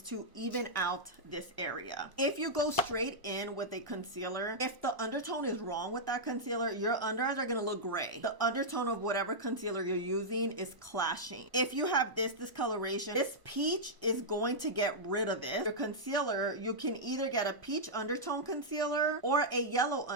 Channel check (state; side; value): late; left; 1.1 ms